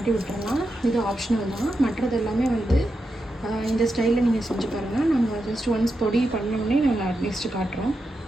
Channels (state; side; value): normal; both; correlation 0.87